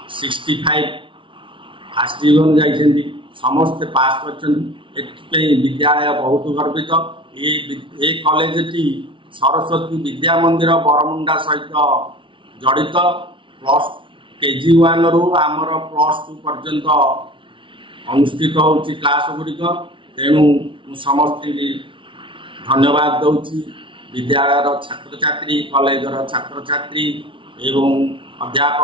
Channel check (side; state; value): left; late; 0.25 ms